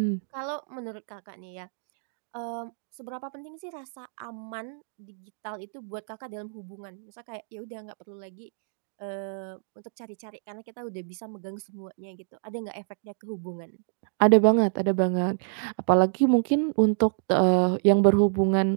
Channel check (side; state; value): left; silent; digital silence